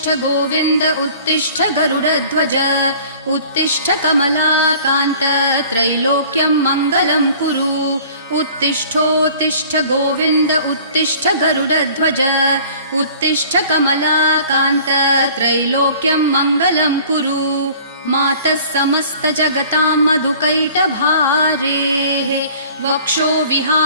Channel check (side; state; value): both; inverted; correlation -0.49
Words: गोविन्द उत्तिष्ठ गरुडध्वज उत्तिष्ठ कमलाकान्त त्रैलोक्यम् मङ्गलम् कुरु उत्तिष्ठोत्तिष्ठ गोविन्द उत्तिष्ठ गरुडध्वज उत्तिष्ठ कमलाकान्त त्रैलोक्यम् मङ्गलम् कुरु मातः समस्त जगताम् मधुकैटभारेः वक्षो